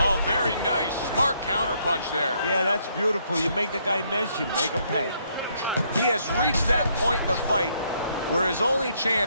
very nice. Smart counterpunch there. Yeah, that's beautiful. You make the guy miss, you make him pay. He has reached that point in the fight where his only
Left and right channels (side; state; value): both; inverted; correlation -0.71